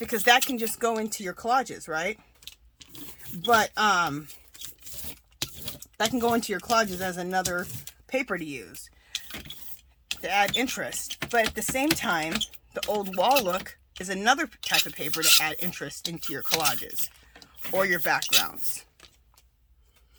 that can just go into your collages, right? But that can go into your collages as another paper to use to add interest. But at the same time, the old wall look is another type of paper to add interest into your collages or your backgrounds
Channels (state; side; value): identical; both; correlation 1.00